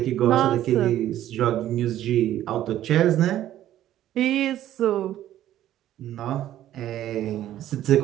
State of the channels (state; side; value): quieter; left; 12.6 dB